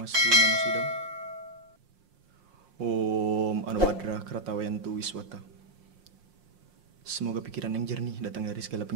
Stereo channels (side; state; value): left; late; 5.6 ms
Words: namasidam. Om Anubhadra Kratawayantu Wiswata. Semoga pikiran yang jernih datang dari segala